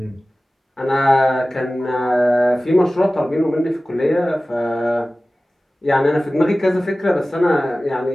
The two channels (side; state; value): both; normal; correlation 0.97